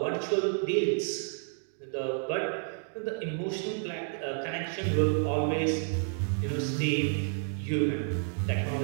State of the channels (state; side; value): silent; left; 58 dB below the other